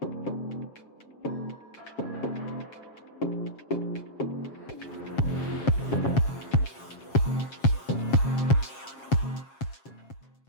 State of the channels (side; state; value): right; late; 7.4 ms